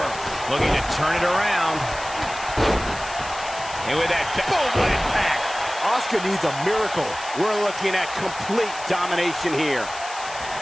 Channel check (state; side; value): noise; left; hiss, 13 dB below the sound